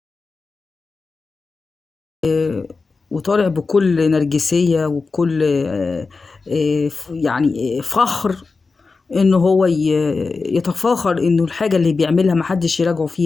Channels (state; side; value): quieter; right; 4.2 dB